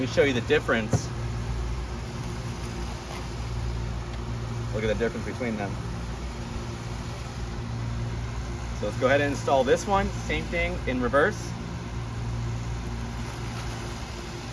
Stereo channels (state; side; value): identical; both; correlation 1.00